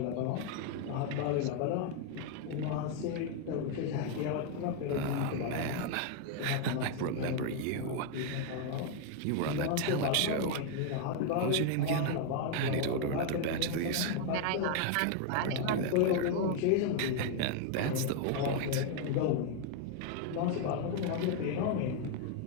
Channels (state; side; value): different; both; correlation 0.00